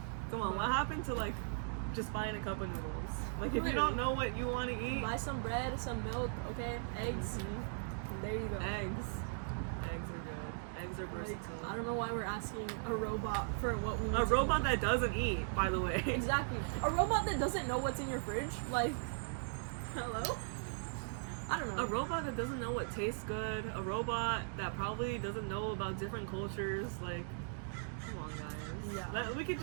Come on, what happened to like just buying a cup of noodles? Like, if you Literally. don't know what you want to eat, Buy some bread, some milk, okay? Eggs. Mhm. There you go. Eggs are good. Eggs are Like, versatile. I don't know why we're asking a robot for what we need A to robot eat. that doesn't eat, by the way. Exactly. A robot that doesn't know what's in your fridge. Like, hello? I don't know. A robot that doesn't know what tastes good. A robot that probably doesn't know about different cultures. Like, come on, guys. Yeah.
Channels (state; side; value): silent; left; digital silence